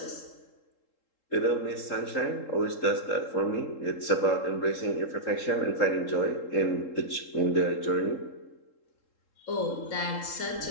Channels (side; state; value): right; late; 3.7 ms